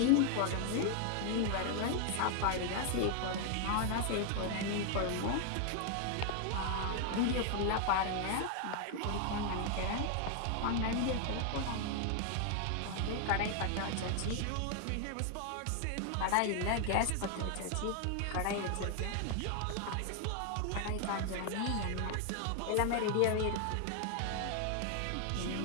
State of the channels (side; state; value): both; different; correlation 0.00